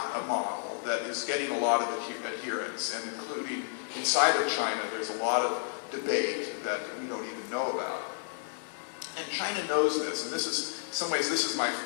a model that is getting a lot of adherence, and including inside of China, there's a lot of debate that we don't even know about. And China knows this, and this is, in some ways, this is my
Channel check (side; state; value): right; silent; digital silence